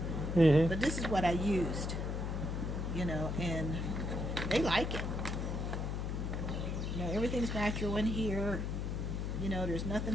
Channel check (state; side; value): noise; left; hum, 2 dB below the sound